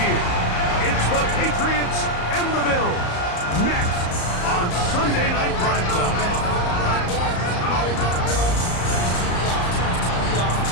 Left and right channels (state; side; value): late; right; 34 ms